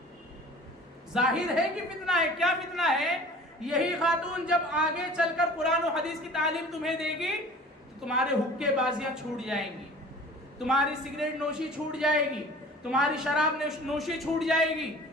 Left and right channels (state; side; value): normal; both; correlation 0.45